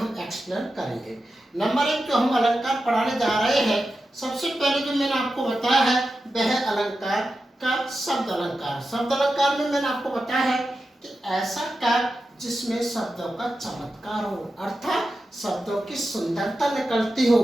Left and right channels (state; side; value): normal; both; correlation 0.91